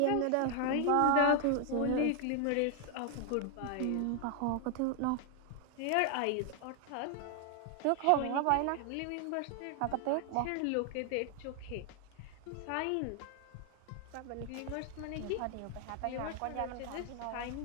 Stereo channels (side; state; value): both; different; correlation 0.00